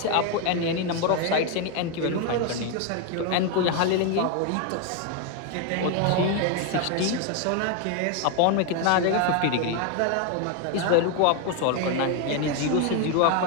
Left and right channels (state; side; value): different; both; correlation 0.01